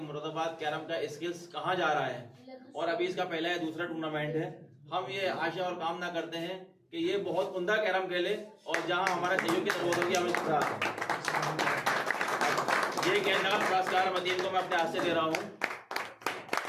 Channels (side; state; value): both; identical; correlation 1.00